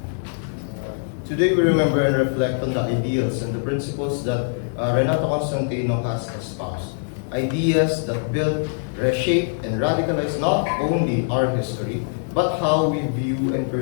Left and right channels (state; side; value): silent; right; digital silence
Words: Today we remember and reflect on the ideals and the principles that Renato Constantino has espoused. Ideas that build, reshape, and radicalize not only our history, but how we view and